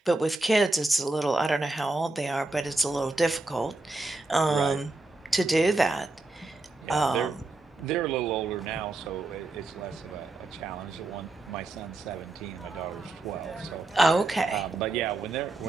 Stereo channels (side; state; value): left; quieter; 3.0 dB